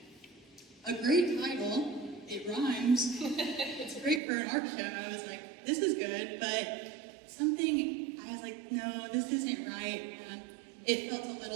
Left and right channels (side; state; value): left; drops out; at 4.2 s